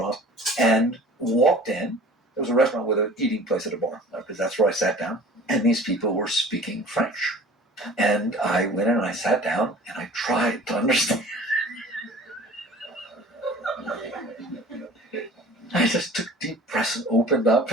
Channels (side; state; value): both; normal; correlation 0.45